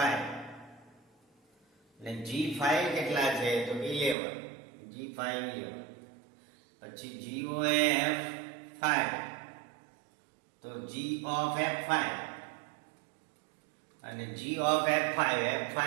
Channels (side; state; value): left; drops out; at 4.2 s